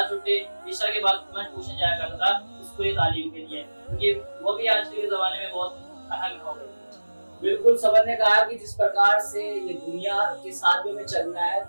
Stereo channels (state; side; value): inverted; both; correlation -1.00